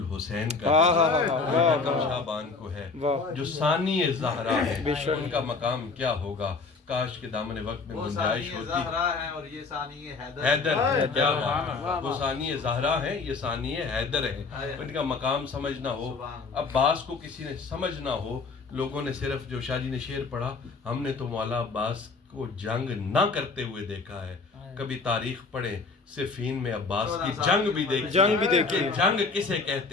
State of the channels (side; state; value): right; quieter; 4.3 dB